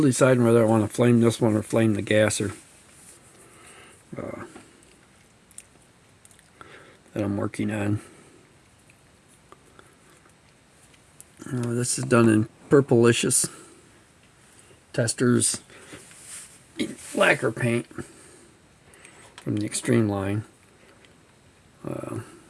deciding whether I want to flame this one or flame the gasser that I'm working on. This is done in Purplicious Testers lacquer paint from the Extreme line.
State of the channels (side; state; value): both; identical; correlation 1.00